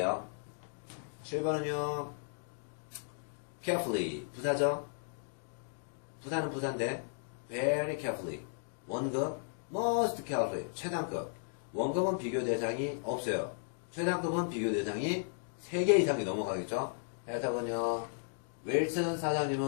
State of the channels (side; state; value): right; silent; digital silence